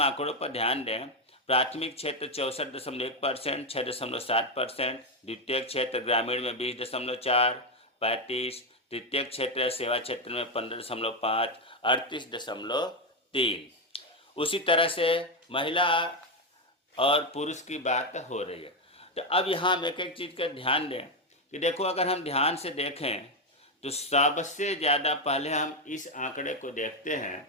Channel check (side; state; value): both; normal; correlation 0.07